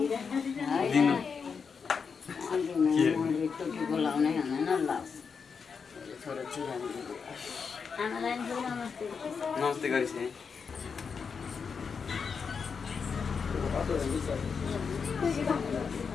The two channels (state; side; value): quieter; right; 5.8 dB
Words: बोलाउनै हुँदैन ल छोरो चिरामी आमालाई नमस्ते नमस्ते गरिस् है